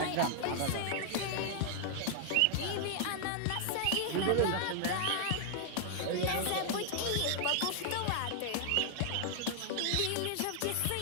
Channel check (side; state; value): both; different; correlation -0.01